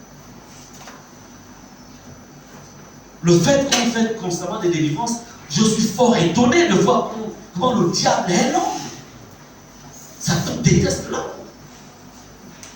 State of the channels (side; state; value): both; identical; correlation 1.00